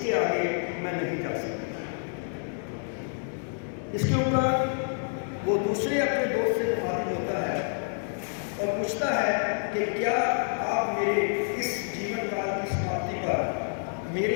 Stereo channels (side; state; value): right; silent; 59 dB below the other